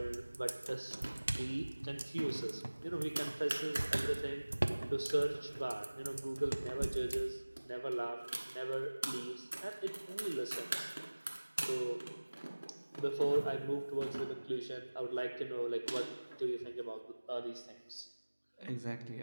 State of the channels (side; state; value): both; inverted; correlation -1.00